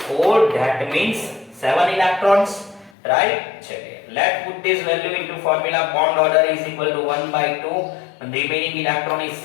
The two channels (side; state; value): right; drops out; at 2.9 s